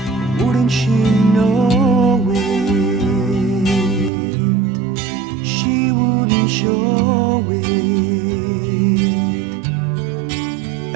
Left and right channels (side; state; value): left; drops out; at 4.1 s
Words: Wouldn't she know it? She wouldn't show it.